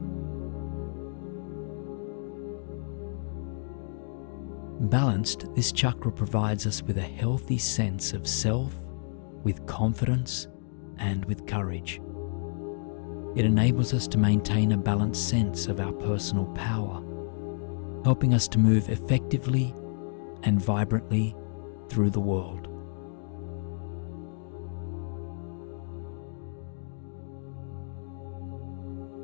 Balanced, this chakra provides us with a healthy sense of self, with confidence, and with courage. It enables us to maintain a balanced sense of our personal power, helping us to move effectively and vibrantly through the world.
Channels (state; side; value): silent; right; digital silence